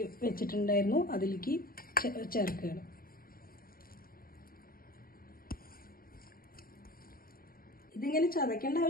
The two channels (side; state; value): right; late; 0.42 ms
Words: വെച്ചിട്ടുണ്ടായിരുന്നു, അതിലേക്ക് ചേർക്കുകയാണ്. ഇതിങ്ങനെ ചതക്കേണ്ട